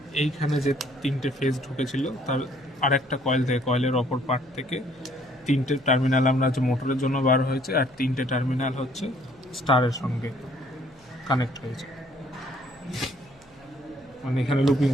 এইখানে যে 3টে ফেজ ঢুকেছিল তার আরেকটা কয়েলের অপর পার্ট থেকে 3টে টার্মিনাল আমরা হচ্ছে মোটরের জন্য বার হয়েছে, আর 3টে টার্মিনাল হচ্ছে স্টারের সঙ্গে কানেক্ট হয়েছে। মানে এখানে লুপিং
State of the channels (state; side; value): noise; right; hum, 28 dB below the sound